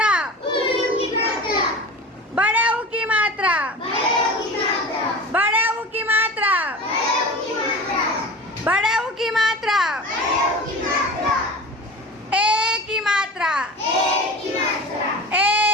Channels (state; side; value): normal; both; correlation 0.34